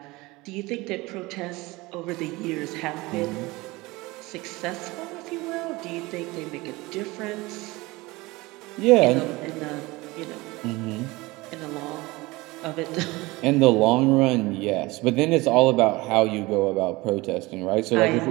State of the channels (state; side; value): quieter; left; 21.9 dB